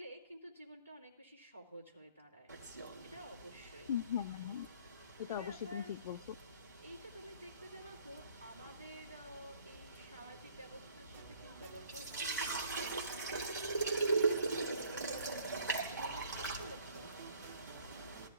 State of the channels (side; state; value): both; inverted; correlation -0.56